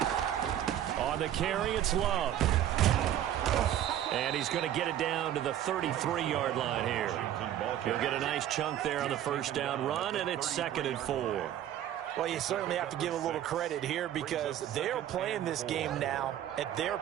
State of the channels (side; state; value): left; quieter; 11.4 dB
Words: On the carry, it's Love. And he's going to get it down to the 33-yard line here. He'll get a nice chunk there on the first down run, and it's 2nd and 4. Well, you certainly have to give a little credit here, because they're playing this game now at their